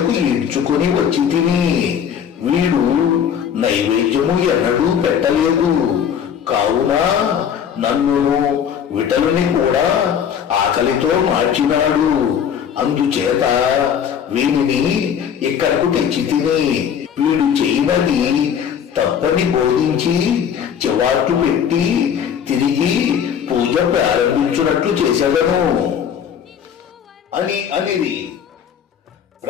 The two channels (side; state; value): right; quieter; 8.2 dB